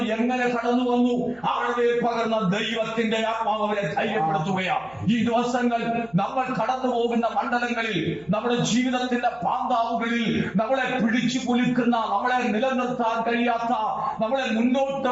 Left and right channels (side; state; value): right; noise; hum, 29 dB below the sound